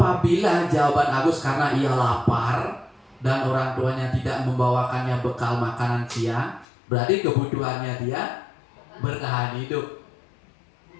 jawaban Agus karena ia lapar dan orang tuanya tidak membawakannya bekal makanan siang, berarti kebutuhannya dia bertahan hidup.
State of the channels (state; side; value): drops out; right; at 6.7 s